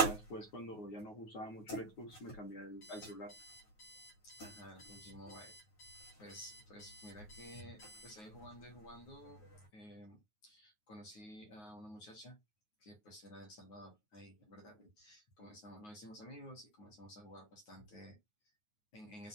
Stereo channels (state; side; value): late; right; 9.5 ms